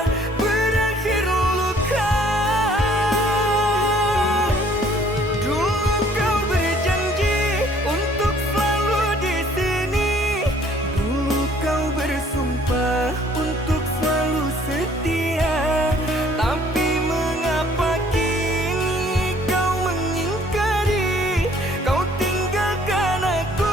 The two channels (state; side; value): normal; both; correlation 0.58